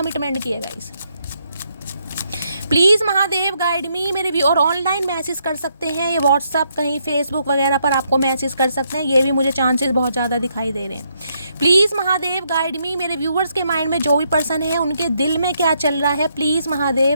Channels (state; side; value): inverted; both; correlation -0.75